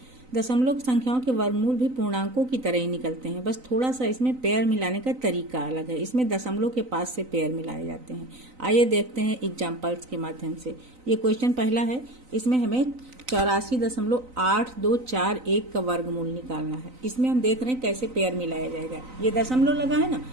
दशमलव संख्याओं के वर्गमूल भी पूर्णांकों की तरह ही निकलते हैं, बस थोड़ा सा इसमें पेयर मिलाने का तरीका अलग है। इसमें दशमलव के पास से पेयर मिलाए जाते हैं। आइए देखते हैं एग्जाम्पल्स के माध्यम से। ये क्वेश्चन पहला है, इसमें हमें 84.8241 का वर्गमूल निकालना है। इसमें हम देख रहे हैं कैसे पेयर मिलाया जाएगा। ये दशमलव लगा है ना,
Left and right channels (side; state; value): left; late; 3.9 ms